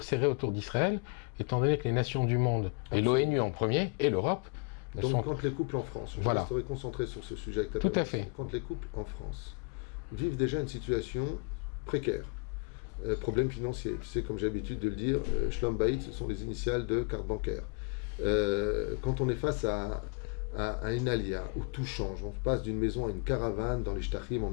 autour d'Israël, étant donné que les nations du monde, Absolument. et l'ONU en premier, et l'Europe, donc quand les couples en France, je resterai concentré sur ce sujet avec ta permission, quand les couples en France vivent déjà une situation précaire, problème financier, tu sais, comme j'ai l'habitude de le dire, Shlom Bayit, ce sont les initiales de carte bancaire. Quand on est face à une alia où tout change, on passe d'une maison à une caravane dans les Shtachim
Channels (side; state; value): right; quieter; 32.2 dB